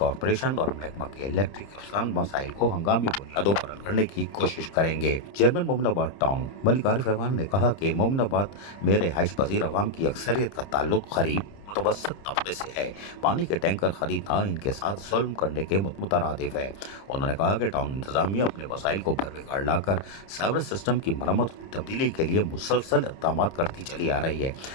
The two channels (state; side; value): late; right; 30 ms